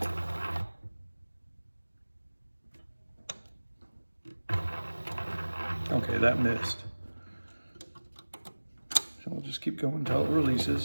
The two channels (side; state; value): both; inverted; correlation -1.00